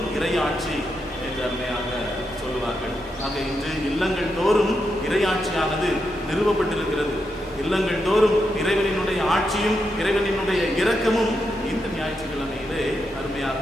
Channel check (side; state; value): both; normal; correlation 0.84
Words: இறையாட்சி என்று அருமையாக சொல்லுவார்கள். ஆக இன்று இல்லங்கள் தோறும் இறையாட்சியானது நிறுவப்பட்டிருக்கிறது. இல்லங்கள் தோறும் இறைவனினுடைய ஆட்சியும் இறைவனினுடைய இரக்கமும் இந்த ஞாயிற்றுக்கிழமையிலே அருமையாக